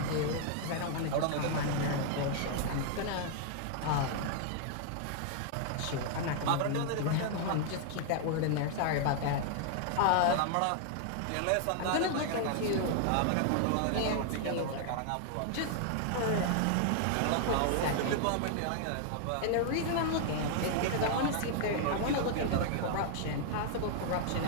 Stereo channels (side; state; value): both; different; correlation -0.01